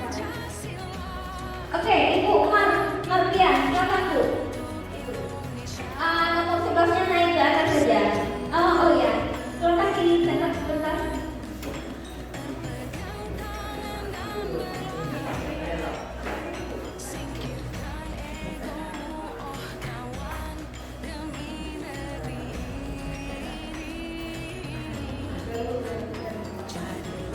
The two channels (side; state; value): both; identical; correlation 1.00